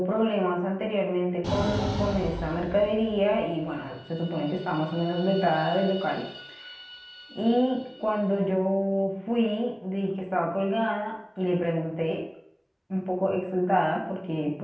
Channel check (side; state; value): both; identical; correlation 1.00